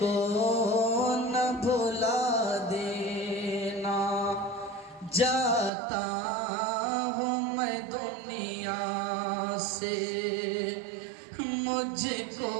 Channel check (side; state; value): left; drops out; at 5.7 s